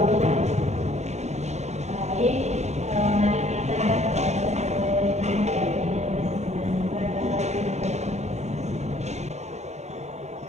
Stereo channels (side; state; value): left; late; 0.33 ms